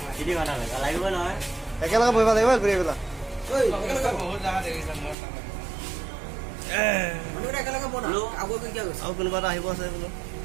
তিনি ঘণ্টা লাগিব নহয় একেলগে বহিব লাগিব ঘূৰি পেলা আৰু কোনোবা এটা আহিব আছে বোলো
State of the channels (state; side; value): drops out; left; at 5.2 s